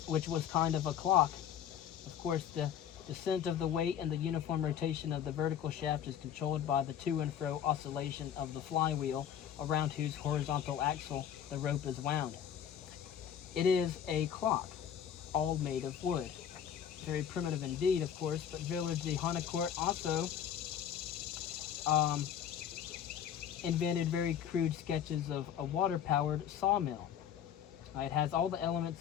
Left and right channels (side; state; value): right; quieter; 9.2 dB